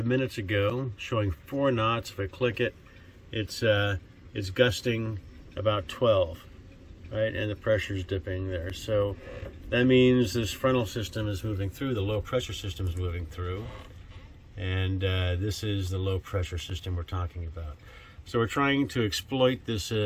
minutes ago showing 4 knots. If I click it, it's gusting about 12, right? And the pressure is dipping there. So that means this frontal system is moving through, the low pressure system is moving through, and this is the low pressure system we're talking about. So we're trying to exploit this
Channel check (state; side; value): identical; both; correlation 1.00